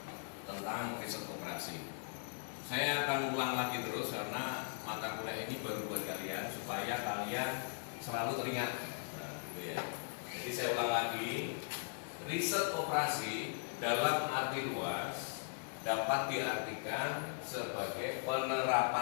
tentang riset operasi. Saya akan ulang lagi terus karena mata kuliah ini baru buat kalian supaya kalian selalu teringat. Nah, gitu ya. Jadi saya ulang lagi, riset operasi dalam arti luas dapat diartikan sebagai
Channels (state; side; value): silent; right; digital silence